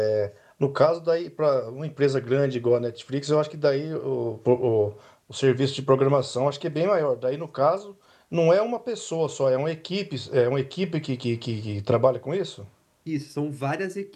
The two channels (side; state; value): both; identical; correlation 1.00